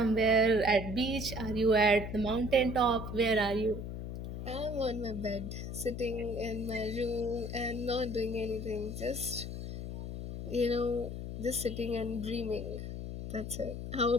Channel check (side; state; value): left; noise; hum, 6 dB below the sound